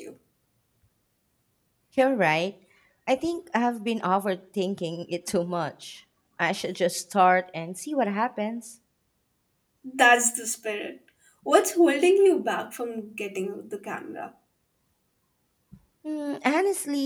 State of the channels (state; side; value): identical; both; correlation 1.00